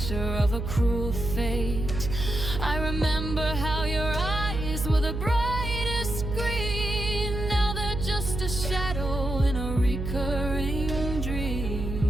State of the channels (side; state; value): right; noise; hum, 4 dB below the sound